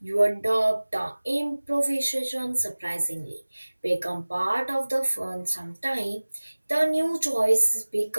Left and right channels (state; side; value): inverted; both; correlation -1.00